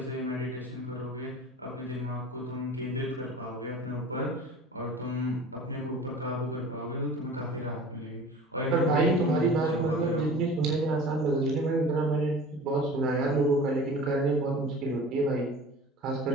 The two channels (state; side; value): normal; both; correlation 0.40